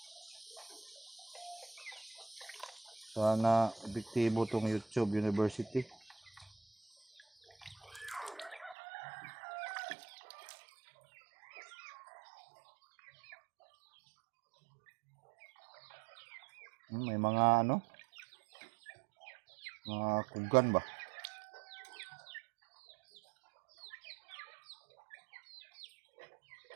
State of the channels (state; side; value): drops out; left; at 8.8 s